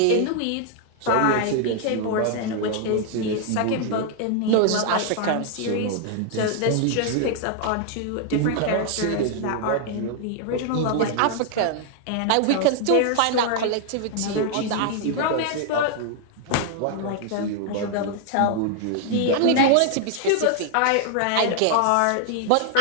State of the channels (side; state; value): both; different; correlation 0.00